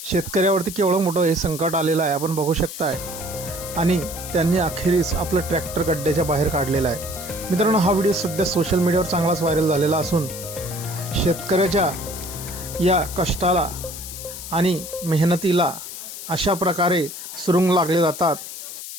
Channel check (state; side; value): noise; left; hiss, 10 dB below the sound